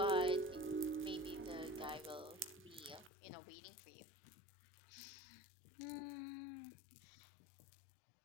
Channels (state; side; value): drops out; right; at 3.1 s